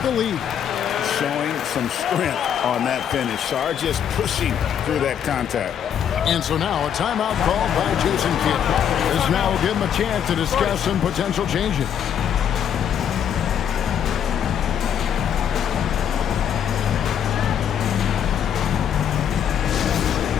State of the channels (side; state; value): right; quieter; 8.8 dB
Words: the lead. Showing some strength on that finish. Sarr just pushing through that contact. And so now a timeout called by Jason Kidd. This now will give him a chance to discuss some potential changes.